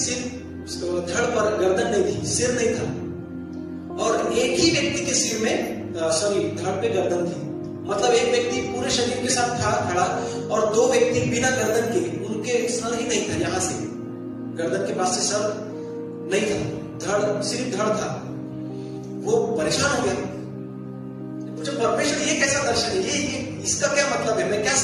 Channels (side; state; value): both; identical; correlation 1.00